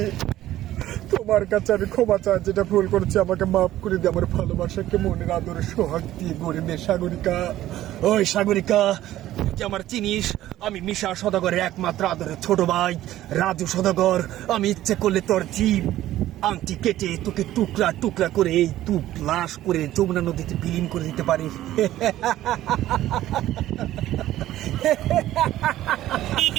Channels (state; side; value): quieter; left; 14.0 dB